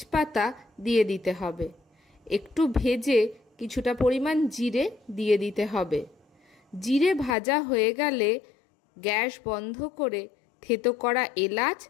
দিয়ে দিতে হবে। একটু ভেজে কিছুটা পরিমাণ জিরে দিয়ে দিতে হবে। জিরে ভাজা হয়ে গেলে গ্যাস বন্ধ করে থেতো করা এলাচ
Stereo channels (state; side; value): drops out; right; at 7.4 s